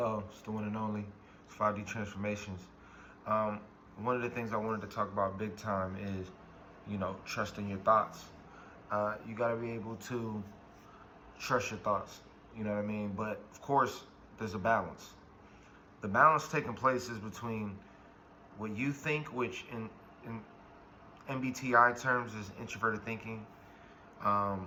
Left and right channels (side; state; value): both; identical; correlation 1.00